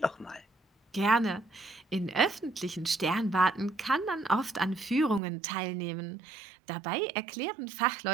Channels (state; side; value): drops out; left; at 5.2 s